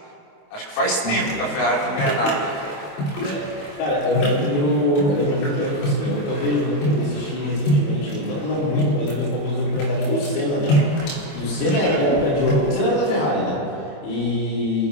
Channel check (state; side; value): late; right; 28 ms